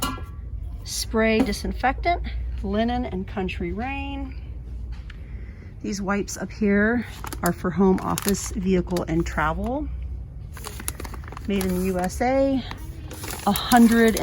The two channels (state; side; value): identical; both; correlation 1.00